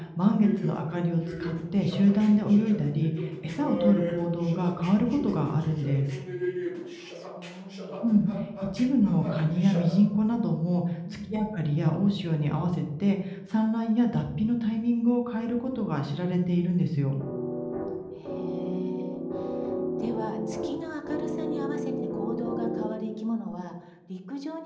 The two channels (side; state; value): both; identical; correlation 1.00